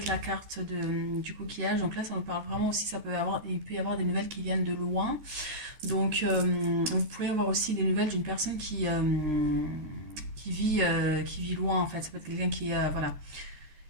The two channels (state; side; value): late; left; 13 ms